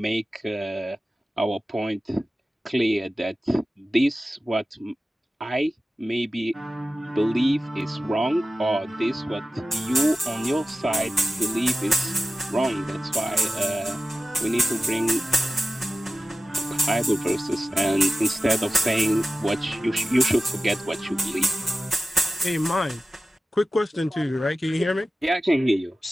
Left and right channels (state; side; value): normal; both; correlation 0.96